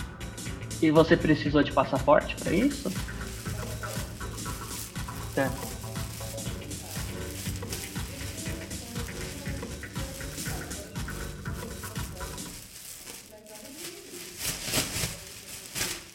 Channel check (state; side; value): identical; both; correlation 1.00